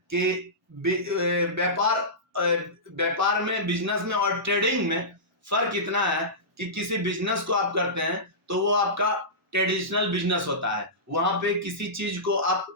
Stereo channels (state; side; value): normal; both; correlation -0.18